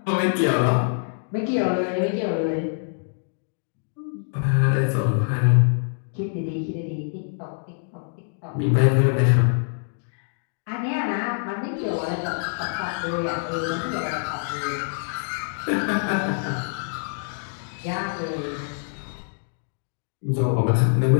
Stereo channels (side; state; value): right; silent; digital silence